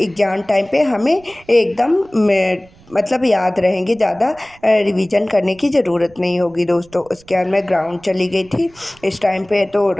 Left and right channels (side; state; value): right; noise; rumble, 27 dB below the sound